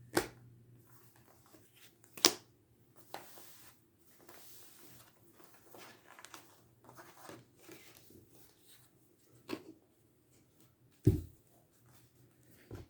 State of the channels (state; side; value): identical; both; correlation 1.00